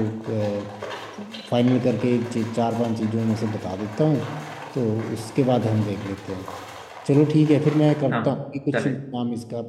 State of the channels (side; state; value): both; identical; correlation 1.00